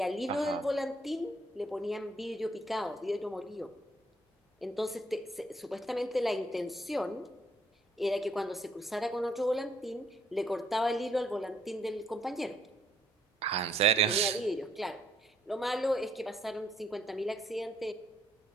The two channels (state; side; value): normal; both; correlation 0.68